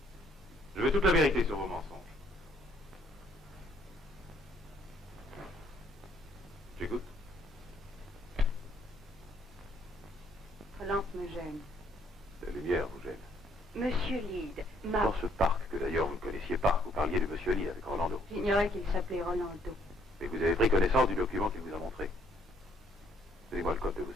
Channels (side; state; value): both; normal; correlation 0.66